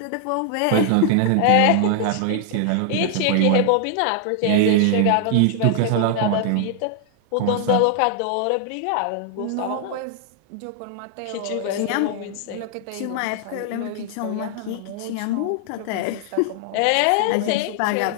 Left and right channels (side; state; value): both; different; correlation 0.00